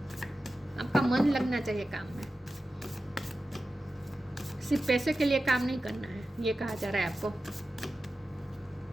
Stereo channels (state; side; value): normal; both; correlation 0.93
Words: आपका मन लगना चाहिए काम में, सिर्फ पैसे के लिए काम नहीं करना है, ये कहा जा रहा है आपको।